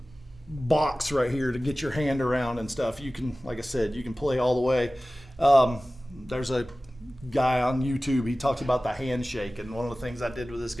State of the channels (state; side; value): normal; both; correlation 0.97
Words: box right here to get your hand around and stuff. You can, like I said, you can play all the way. There's a guy on YouTube, he talks about the handshake, and one of the things I did with this